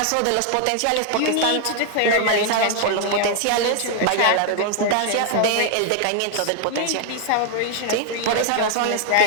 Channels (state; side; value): different; both; correlation 0.00